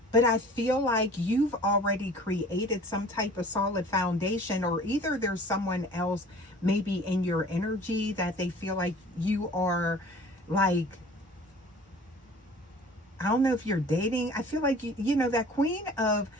But I feel like you've already created some type of solid foundation, or either there's someone else maybe in your energy that they feel like you are like, I don't know if you're dating. I feel like, you know, that queen of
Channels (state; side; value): normal; both; correlation 0.46